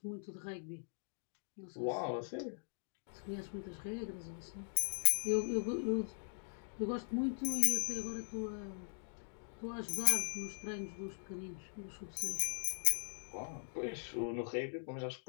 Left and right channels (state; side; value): silent; right; digital silence